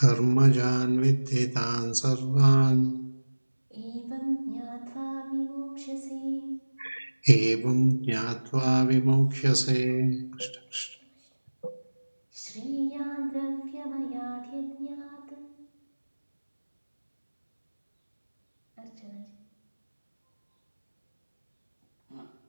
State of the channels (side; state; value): both; inverted; correlation -1.00